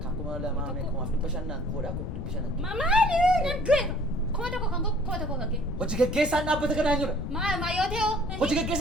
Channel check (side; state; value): left; noise; rumble, 4 dB below the sound